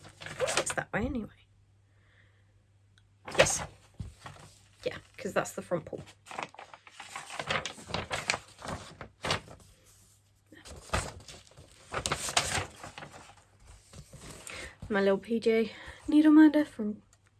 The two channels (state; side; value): identical; both; correlation 1.00